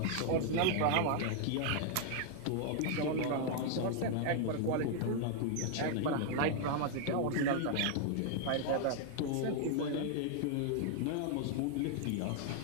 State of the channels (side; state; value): both; different; correlation 0.00